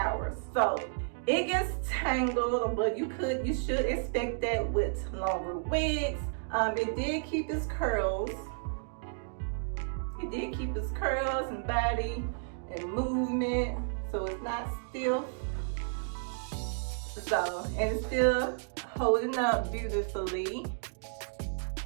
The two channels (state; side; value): silent; left; digital silence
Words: So it gets tangled, but you should expect that with longer wigs. It did keep its curls. It did keep its curls and body and movement, so it's not stiff. So, and it's still holding up beautifully.